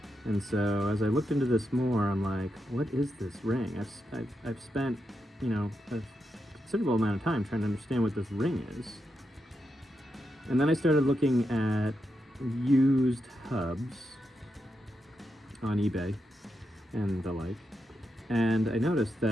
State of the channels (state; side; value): normal; both; correlation 0.85